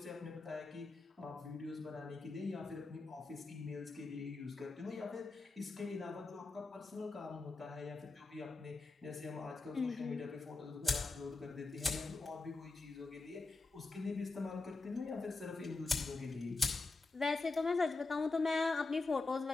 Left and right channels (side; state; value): right; quieter; 3.7 dB